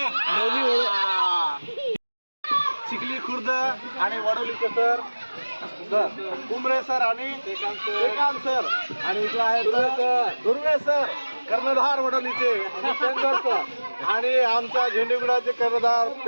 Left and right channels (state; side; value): inverted; both; correlation -1.00